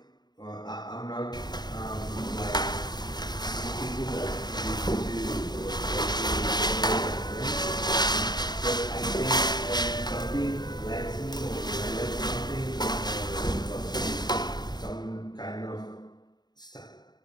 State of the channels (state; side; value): late; right; 0.20 ms